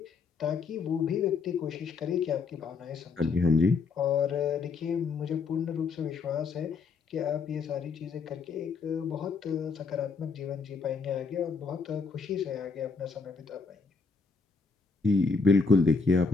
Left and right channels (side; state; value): right; quieter; 4.7 dB